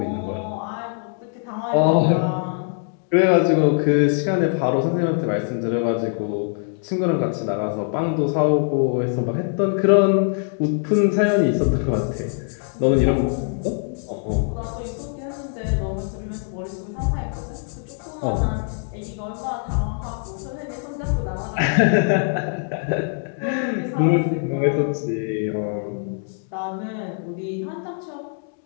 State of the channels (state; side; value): silent; right; 64 dB below the other